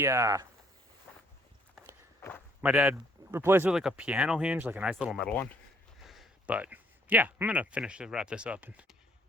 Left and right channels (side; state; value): both; normal; correlation 0.64